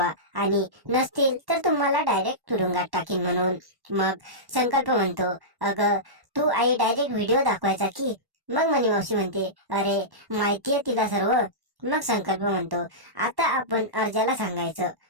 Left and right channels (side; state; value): left; late; 1.1 ms